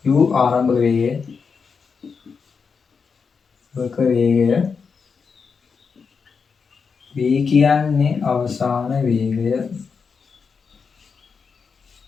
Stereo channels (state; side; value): quieter; right; 5.6 dB